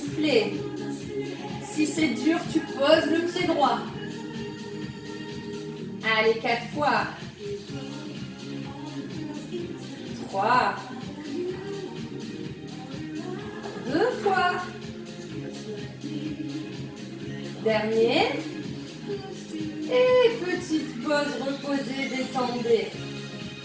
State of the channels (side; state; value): both; identical; correlation 1.00